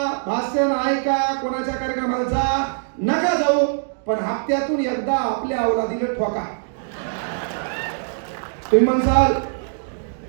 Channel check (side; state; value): left; silent; digital silence